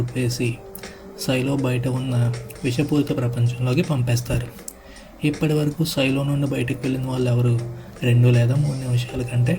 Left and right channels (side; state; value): both; identical; correlation 1.00